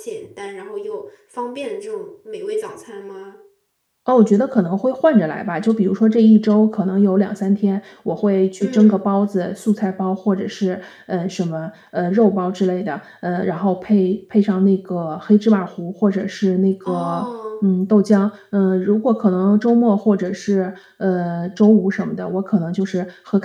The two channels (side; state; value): both; identical; correlation 1.00